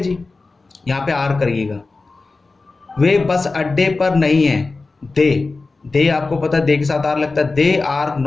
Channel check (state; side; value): quieter; right; 3.7 dB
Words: जी, यहाँ पे आर करिएगा। वे बस अड्डे पर नहीं है, दे आपको पता है दे के साथ आर लगता है, दे आर